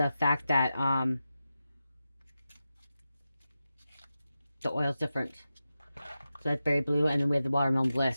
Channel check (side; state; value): both; inverted; correlation -0.92